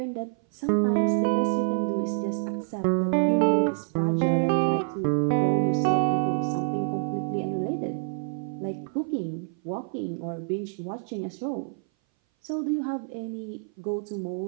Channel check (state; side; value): silent; left; 58 dB below the other